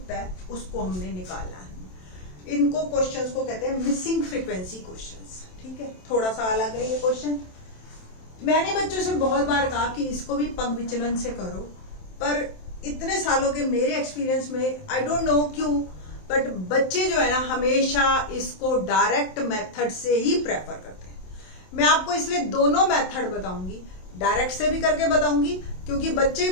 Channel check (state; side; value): late; right; 27 ms